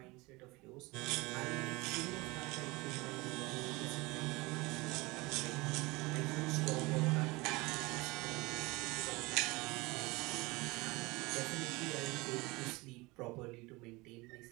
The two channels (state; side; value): quieter; left; 23.6 dB